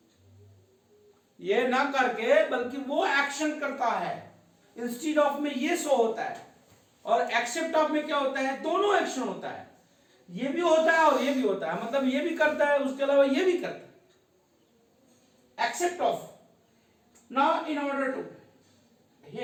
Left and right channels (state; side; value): identical; both; correlation 1.00